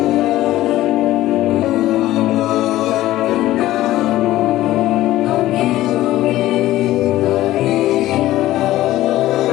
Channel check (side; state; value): right; quieter; 15.4 dB